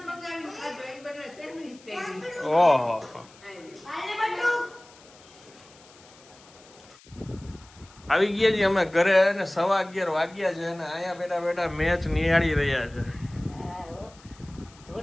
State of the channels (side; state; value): left; noise; hiss, 25 dB below the sound